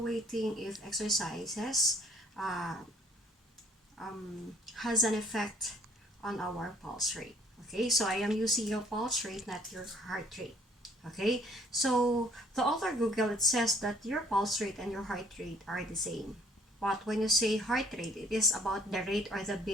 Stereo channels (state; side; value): normal; both; correlation 0.59